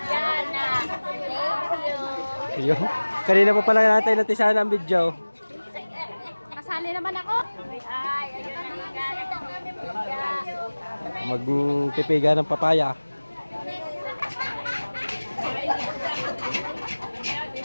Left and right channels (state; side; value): inverted; both; correlation -1.00